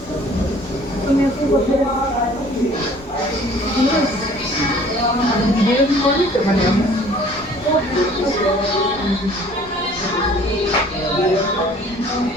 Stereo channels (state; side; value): normal; both; correlation 0.53